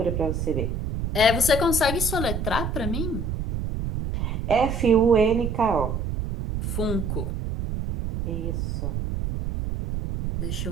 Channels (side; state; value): right; noise; rumble, 3 dB below the sound